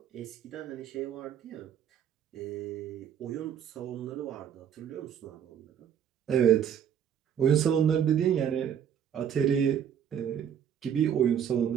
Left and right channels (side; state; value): left; quieter; 8.8 dB